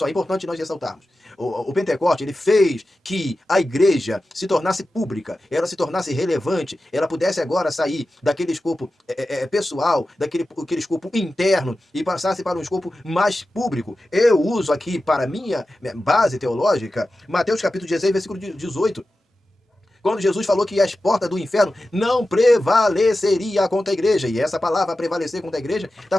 importante nós ressaltarmos. O Pentecoste, ele fez que a igreja se tornasse pública, ela se tornasse relevante, ela pudesse agora sair daquele escopo pessoal, daquele escopo interno e passasse para um escopo mais público. Eu uso aqui para minha base teológica, Mateus capítulo 16, versículo 18. Quando Jesus falou que as portas do inferno não prevaleceria contra a igreja. E essa palavra prevalecer contra a igreja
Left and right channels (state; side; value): normal; both; correlation 0.93